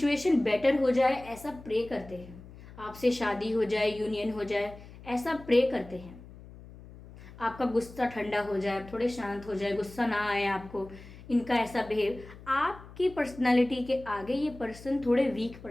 बेटर हो जाए ऐसा प्रे करते हैं, आपसे शादी हो जाए, यूनियन हो जाए, ऐसा प्रे करते हैं। आपका गुस्सा ठंडा हो जाए, थोड़े शांत हो जाए, गुस्सा ना आए आपको, इनका ऐसा बिहेव। आपकी पर्सनालिटी के आगे ये पर्सन थोड़े वीक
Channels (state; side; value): noise; left; hum, 18 dB below the sound